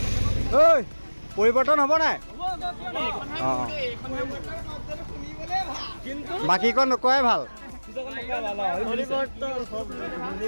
ঐ পৰিৱৰ্তন হ'ব নাই? অঁ বাকীকণ নকোৱাই ভাল।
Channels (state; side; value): inverted; both; correlation -1.00